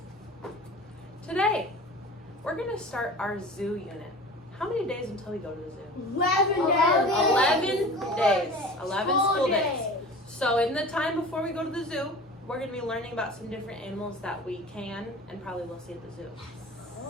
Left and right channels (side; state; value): both; normal; correlation 0.38